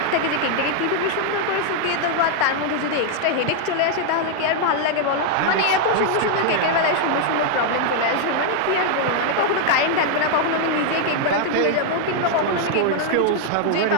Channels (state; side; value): different; both; correlation 0.00